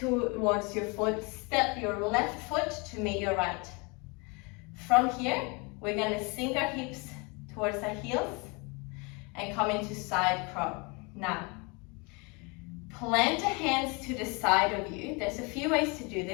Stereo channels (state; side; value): quieter; right; 29.6 dB